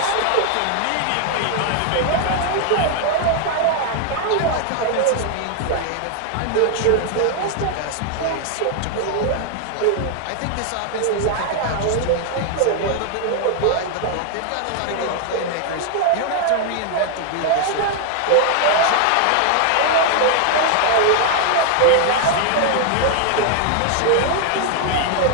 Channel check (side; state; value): both; different; correlation 0.00